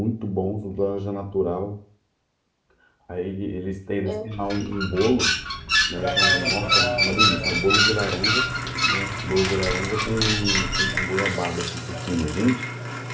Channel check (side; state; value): both; identical; correlation 1.00